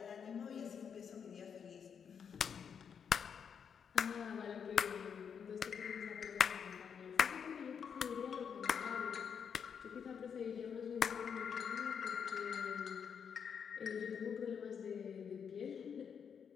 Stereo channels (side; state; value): right; quieter; 7.1 dB